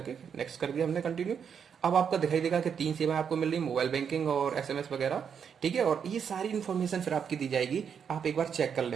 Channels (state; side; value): quieter; left; 7.3 dB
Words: नेक्स्ट कर दिया हमने कंटिन्यू। अब आपका दिखाई देगा कि 3 सेवाएं आपको मिल रही, मोबाइल बैंकिंग और एसएमएस वगैरह, ठीक है। और ये सारी इन्फॉर्मेशन फिर आपकी दी जाएगी, आप एक बार चेक कर